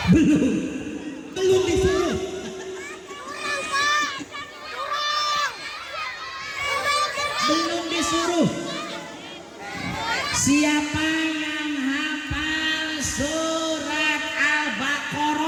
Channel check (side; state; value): both; identical; correlation 1.00